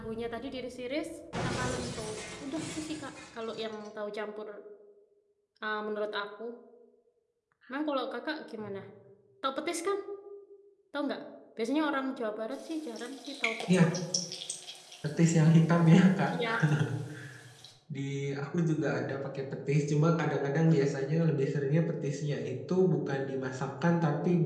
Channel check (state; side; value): identical; both; correlation 1.00